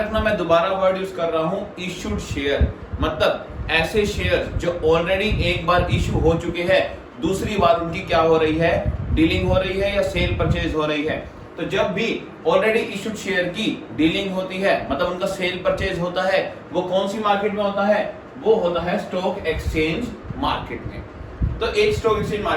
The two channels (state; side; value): identical; both; correlation 1.00